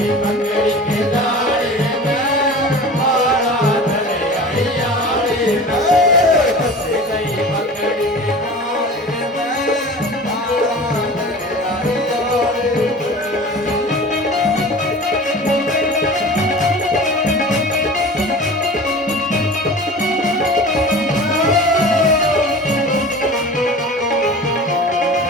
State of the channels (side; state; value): both; normal; correlation 0.37